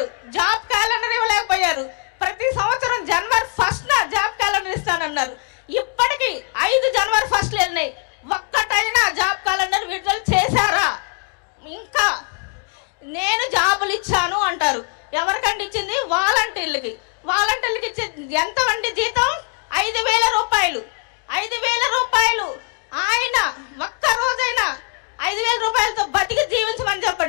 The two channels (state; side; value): quieter; right; 34.3 dB